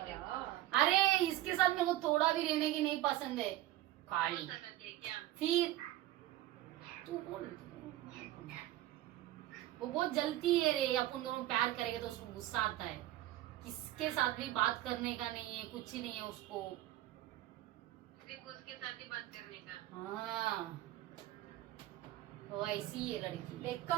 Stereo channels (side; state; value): left; quieter; 15.1 dB